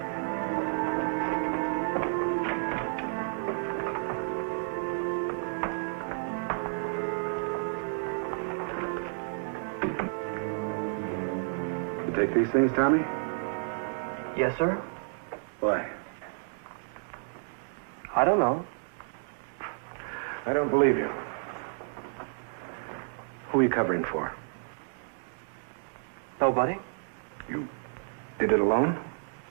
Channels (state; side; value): silent; left; digital silence